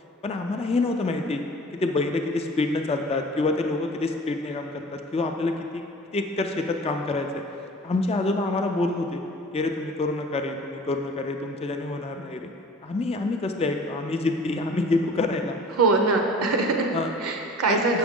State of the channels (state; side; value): normal; both; correlation 0.44